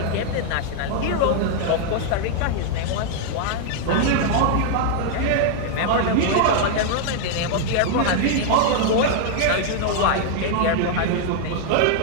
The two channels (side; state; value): both; different; correlation 0.00